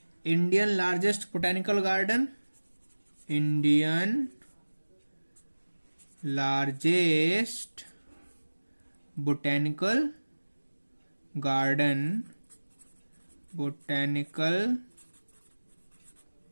Indian largest botanical garden. Indian largest botanical garden. Botanical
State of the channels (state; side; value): inverted; both; correlation -1.00